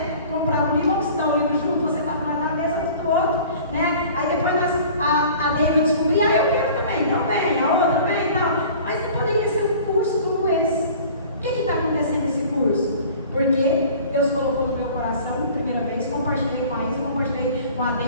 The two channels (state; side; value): inverted; both; correlation -0.46